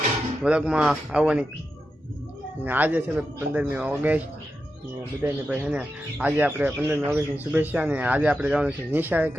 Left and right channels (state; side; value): normal; both; correlation 0.89